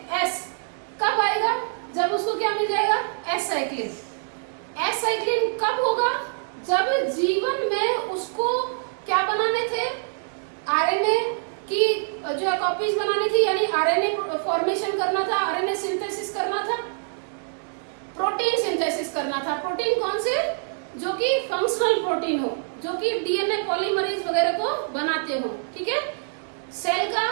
S कब आएगा? जब उसको क्या मिल जाएगा? S cyclin. एस साइक्लिन कब होगा? जब G1 में उसको क्या बनाने थे? आरएनए की जो है कॉपीज बनानी थी, यानी आरएनए फॉर्मेशन करना था, आरएनए सिंथेसिस करना था, प्रोटीन सिंथेसिस करना था। प्रोटीन कौन से? जो कि फंक्शनल प्रोटीन हो, जो कि डीएनए पॉलीमरेज वगैरह को बनाते हो। ठीक है। सेल का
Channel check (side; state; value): left; silent; digital silence